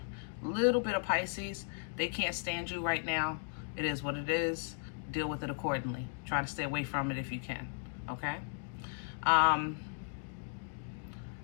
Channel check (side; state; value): right; silent; digital silence